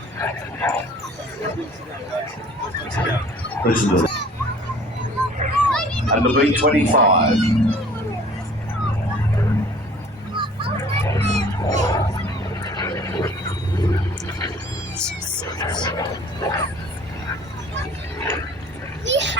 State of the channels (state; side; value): normal; both; correlation 0.51